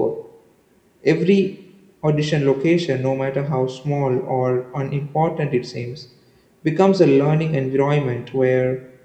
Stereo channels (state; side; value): identical; both; correlation 1.00